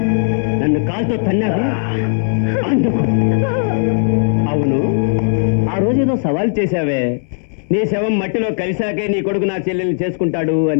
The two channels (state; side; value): silent; right; digital silence